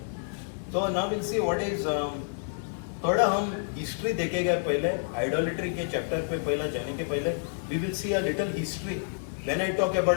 तो now will see what is. थोड़ा हम हिस्ट्री देखेंगे पहले आइडोलेट्री के चैप्टर पे. पहला जाने के पहले we will see a little history. When I talk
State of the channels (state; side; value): silent; right; 59 dB below the other